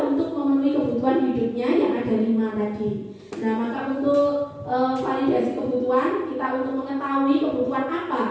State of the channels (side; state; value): both; identical; correlation 1.00